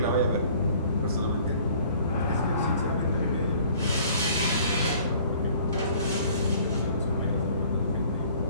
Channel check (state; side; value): inverted; both; correlation -0.54